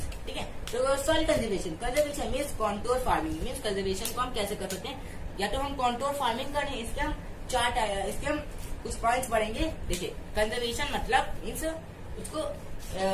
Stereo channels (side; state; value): both; identical; correlation 1.00